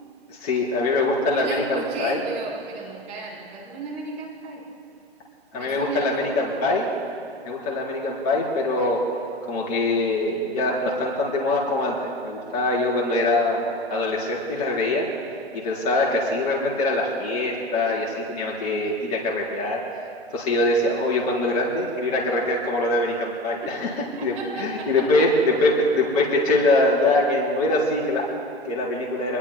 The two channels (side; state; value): both; normal; correlation 0.33